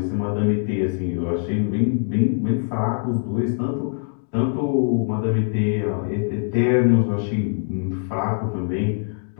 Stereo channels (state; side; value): silent; right; digital silence